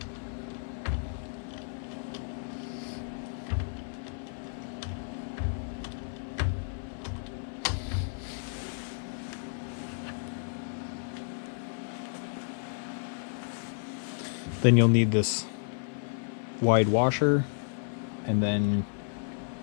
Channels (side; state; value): right; silent; 56 dB below the other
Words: Then you'll need this wide washer, and then